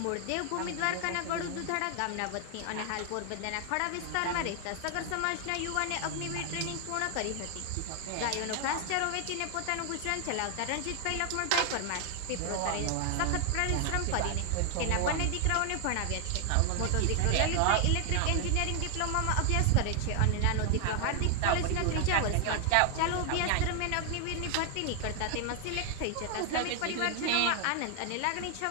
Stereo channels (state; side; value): different; both; correlation 0.00